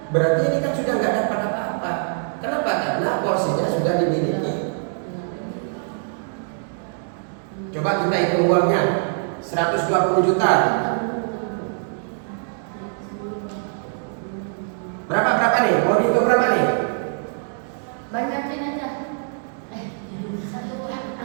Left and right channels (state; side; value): silent; left; digital silence